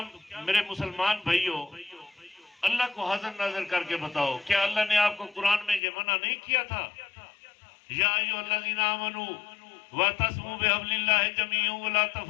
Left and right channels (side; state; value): right; drops out; at 5.8 s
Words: मेरे मुसलमान भाइयों, अल्लाह को हाजिर नाजिर करके बताओ, क्या अल्लाह ने आपको कुरान में ये मना नहीं किया था? या अय्युहल्लज़ीना आमनू वतस्मू बिहब्लिल्लाहि जमीअन वला